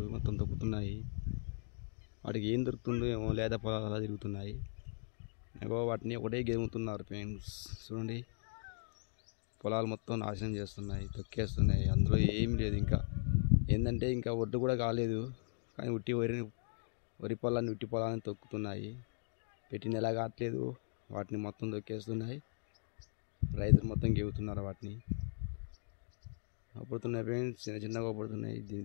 మొత్తం తొక్కుతున్నాయి. వాటికి ఏం దొరుకుతుందో ఏమో, లేదా పొలాలు అలా తిరుగుతున్నాయి. వాటిని ఒకటే గేముతున్నారు ఫ్రెండ్స్. చూడండి, పొలాలు మొత్తం నాశనం చేస్తున్నాయి, తొక్కేస్తున్నాయి. అందులో ఏమి లేదు. ఇంకా ఏంటంటే ఇంకా ఒడ్డు కూడా కాలేదు, కానీ వరి పొలాన్ని ఉట్టి పొలాన్ని తొక్కుతున్నాయి. పెట్టిన ఎలా కావట్లేదు, వాటిని మొత్తం తొక్కేస్తున్నాయి. రైతులు మొత్తం గేగుతున్నారు. వాటిని అప్పుడుతున్నాయి ఫ్రెండ్స్, చిన్న చిన్నగా అప్పుడుతున్నాయి.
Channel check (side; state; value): right; silent; digital silence